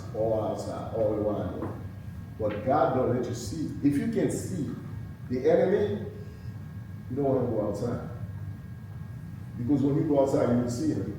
all outside, all around you. But God don't let you see. If you can see the enemy, you don't want to go outside. Because when you go outside, you will see him.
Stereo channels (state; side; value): identical; both; correlation 1.00